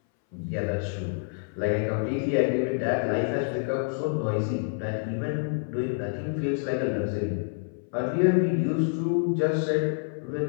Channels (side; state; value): right; silent; 60 dB below the other